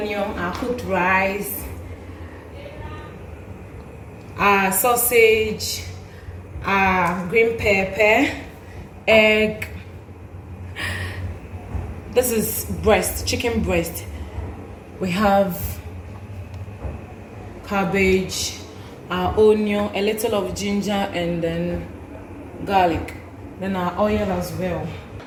our cooked rice, our sausage, our green pepper, egg. This is breast, chicken breast. We have cabbage, our onion, a little of ginger, and then garlic, then our oil as well.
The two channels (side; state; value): both; identical; correlation 1.00